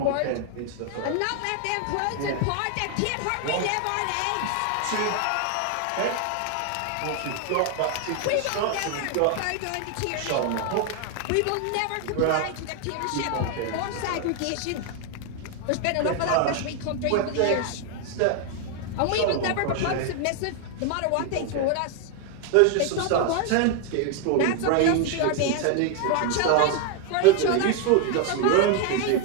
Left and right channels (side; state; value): both; different; correlation 0.01